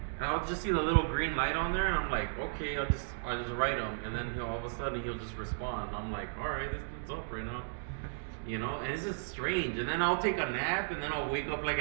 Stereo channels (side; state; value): left; silent; digital silence